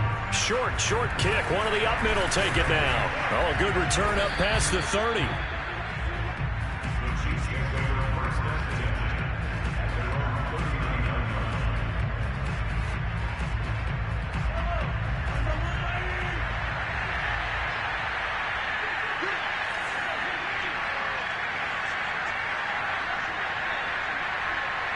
Short kick. One of the up middle take it now. Oh, a good return up past the 30.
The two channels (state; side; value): identical; both; correlation 1.00